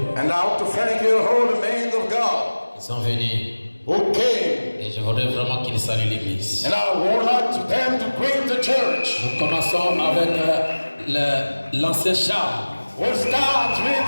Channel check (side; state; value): both; inverted; correlation -1.00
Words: And now to thank you, all the men of God Ils sont venus who came. et je voudrais vraiment qu'ils saluent l'Église. And I would like to them to greet the church. Nous commençons avec l'ancien Charles. We'll start with